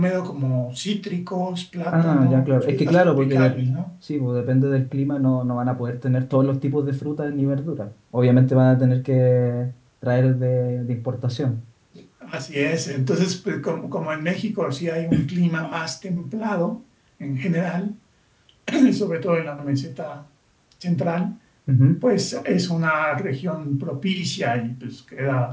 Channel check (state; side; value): identical; both; correlation 1.00